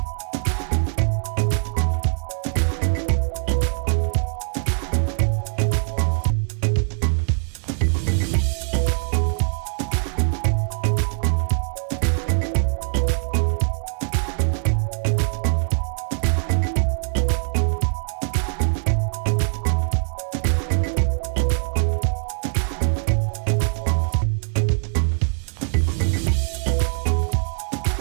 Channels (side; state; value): left; silent; digital silence